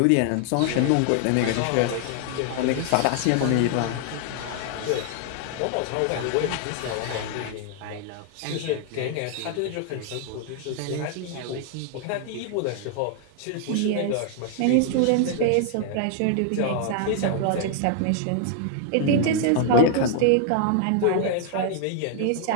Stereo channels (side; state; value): both; different; correlation 0.00